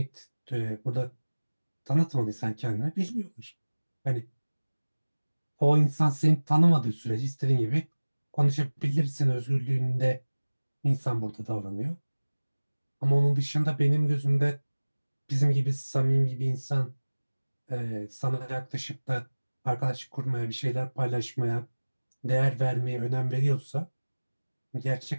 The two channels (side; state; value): both; inverted; correlation -1.00